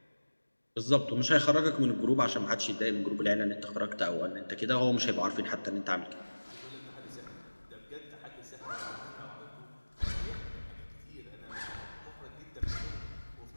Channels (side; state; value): both; inverted; correlation -1.00